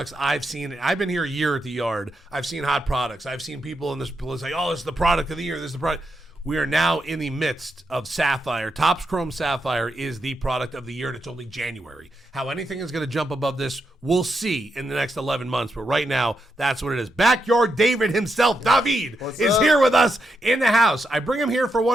I've seen, I've been here a year at the yard. I've seen hot products. I've seen people in this say, oh, this is the product of the year. This is the product. We are now in the midst of Sapphire. Topps Chrome Sapphire is the product of the year, and it's only January. How anything is going to jump above this, we'll see in the next 11 months. But right now, that's what it is. Backyard David himself, David, is here with us in the house. I bring him here for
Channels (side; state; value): both; normal; correlation 0.83